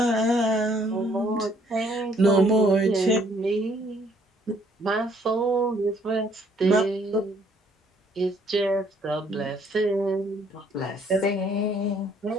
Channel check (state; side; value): normal; both; correlation 0.64